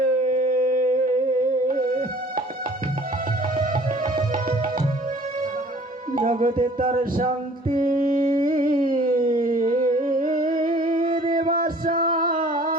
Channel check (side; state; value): both; normal; correlation 0.52